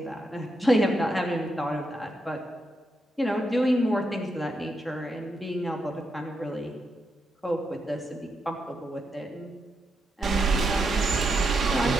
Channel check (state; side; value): normal; both; correlation 0.83